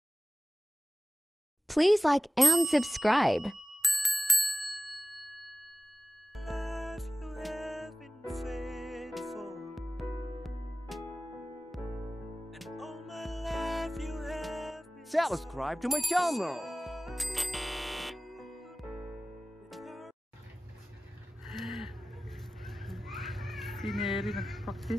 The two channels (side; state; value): both; normal; correlation 0.95